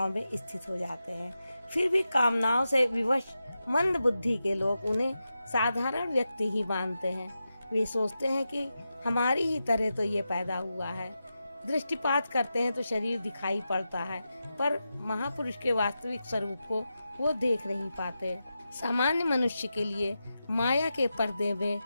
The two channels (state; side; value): inverted; both; correlation -0.90